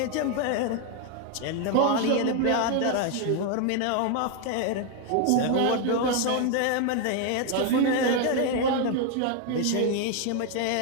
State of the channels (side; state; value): both; different; correlation 0.01